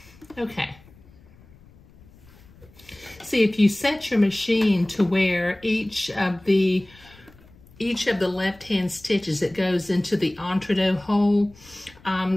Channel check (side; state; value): left; noise; rumble, 25 dB below the sound